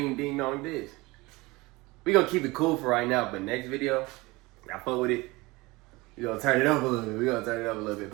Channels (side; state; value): left; quieter; 22.7 dB